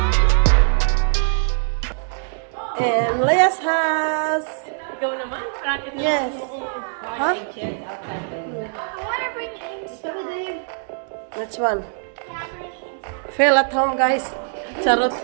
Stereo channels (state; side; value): silent; left; digital silence